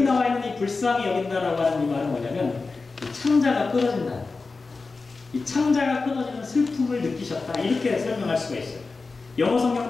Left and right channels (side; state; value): right; quieter; 4.0 dB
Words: 나와 있는 이 불쌍히 여긴다라고 하는 이 말은 뭐냐면 이 창자가 끊어진다. 이 창자가 끊어지는 슬픔을 느끼셨다. 이렇게 설명할 수가 있어요. 영어